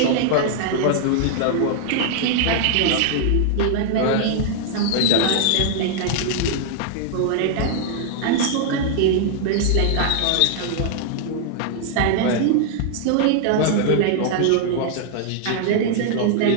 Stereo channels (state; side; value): different; both; correlation 0.00